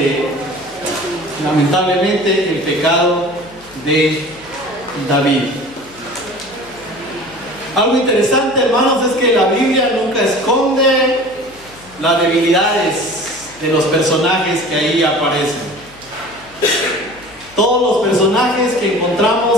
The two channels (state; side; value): noise; left; hum, 25 dB below the sound